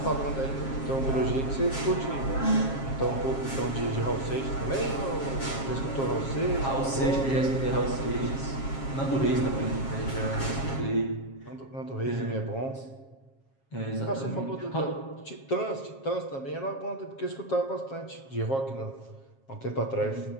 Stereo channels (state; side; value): late; right; 7.4 ms